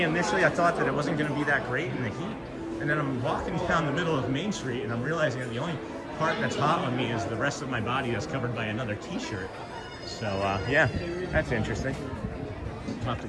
Initially, I thought that it wasn't going to be that great in the heat, and then I'm walking down the middle of Main Street, and I'm realizing that the only part that's hot on me is the rest of my body that's covered by another t-shirt. So yeah, that's interesting. I'll have to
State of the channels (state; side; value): identical; both; correlation 1.00